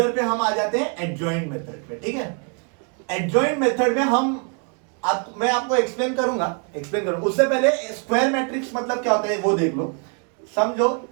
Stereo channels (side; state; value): left; quieter; 39.0 dB